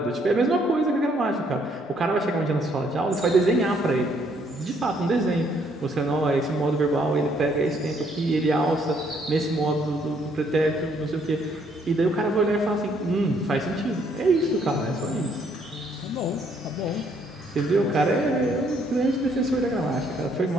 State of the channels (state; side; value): normal; both; correlation 0.68